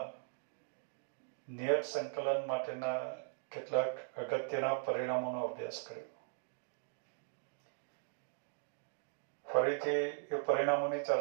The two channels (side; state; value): left; silent; digital silence